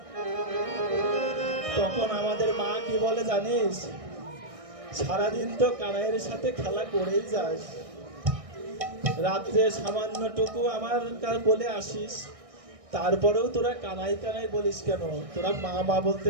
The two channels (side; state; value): left; late; 1.6 ms